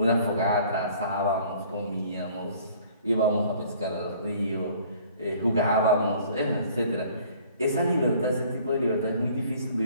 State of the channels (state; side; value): inverted; both; correlation -0.55